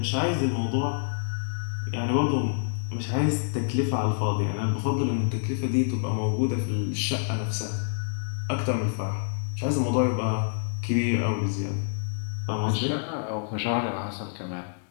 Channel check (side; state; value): right; silent; digital silence